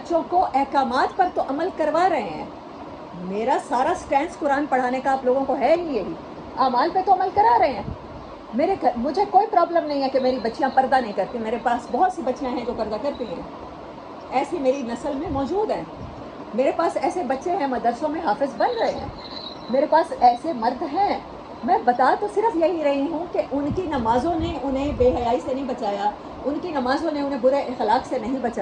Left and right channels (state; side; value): identical; both; correlation 1.00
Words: کو احکامات پر تو عمل کروا رہے ہیں. میرا سارا سٹینس قرآن پڑھانے کا آپ لوگوں کو ہے ہی یہی, اعمال پہ تو عمل کرا رہے ہیں. مجھے کوئی پرابلم نہیں ہے کہ میری بچیاں پردہ نہیں کرتی. میرے پاس بہت سی بچیاں ہیں جو پردہ کرتی ہیں, ایسی میری نسل میں موجود ہیں. میرے پاس ایسے بچے ہیں مدرسوں میں حافظ بن رہے ہیں. میرے پاس ایسے مرد ہیں. میں بتا تو صرف یہی رہی ہوں کہ ان کی نمازوں نے انہیں بے حیائی سے نہیں بچایا, ان کی نمازوں نے انہیں برے اخلاق سے نہیں